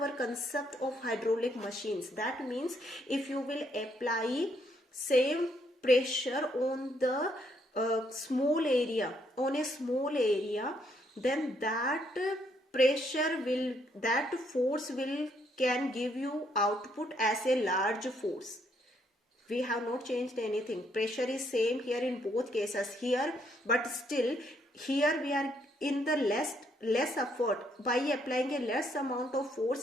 concept of hydraulic machines. That means if you will apply same pressure on the small area, then that pressure will, that force will can give you output as a large force. We have not changed anything. Pressure is same here in both cases here, but still here we are in the less effort. By applying a less amount of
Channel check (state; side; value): normal; both; correlation 0.72